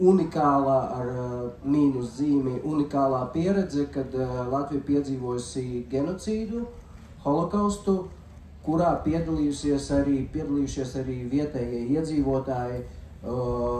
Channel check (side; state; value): both; identical; correlation 1.00